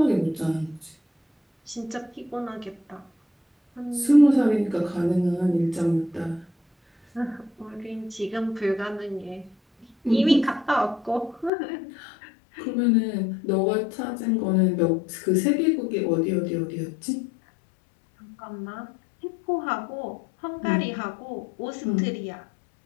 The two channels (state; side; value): drops out; right; at 11.5 s